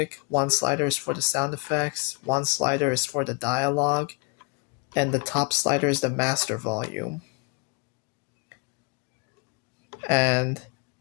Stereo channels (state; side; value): quieter; right; 31.6 dB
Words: one slider is for the sound effects, one slider is for the dialogue, and the top slider is the master volume. And